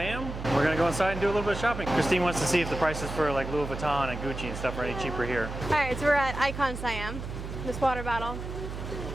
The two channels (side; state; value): right; noise; hum, 7 dB below the sound